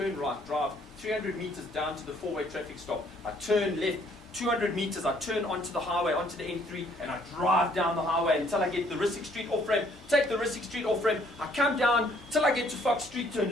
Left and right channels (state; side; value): normal; both; correlation 0.63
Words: right, drive 300 meters down to the 4-way traffic stop. I turn left 200 meters, I turn onto the highway, onto the N3, and I drive down the highway until I get the Rissik Street off-ramp, take the Rissik Street off-ramp, I come down till I get to Fox Street, turn